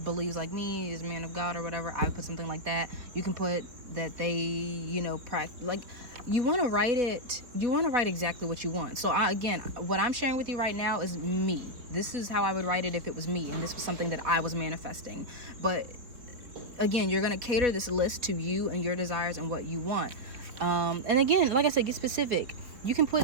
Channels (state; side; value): late; left; 3.9 ms